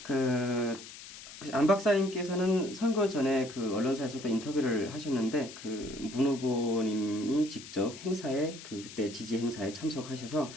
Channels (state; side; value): noise; left; hiss, 15 dB below the sound